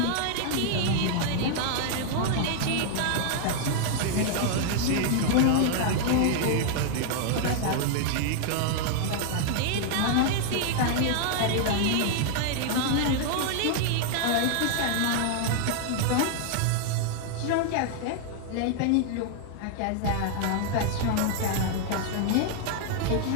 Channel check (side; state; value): both; different; correlation 0.00